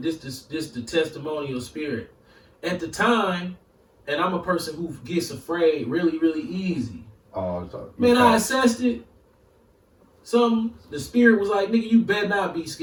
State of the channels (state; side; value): identical; both; correlation 1.00